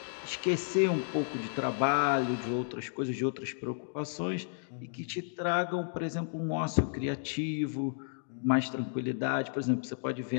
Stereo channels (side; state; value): right; silent; digital silence